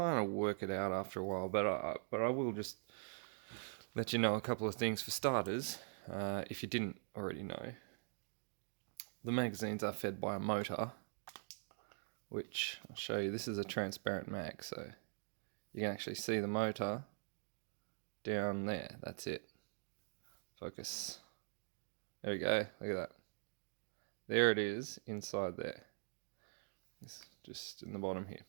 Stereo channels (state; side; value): silent; left; digital silence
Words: of work it out after a while, but I will just let you know a couple of things. For starters, if you didn't already know, the magazines are fed by a motor, which I'll show you. This is a transparent mag, so you can actually see the motor down there. That's it. Focus. There we go. Look at that. There it is inside there. It's just in the bottom here.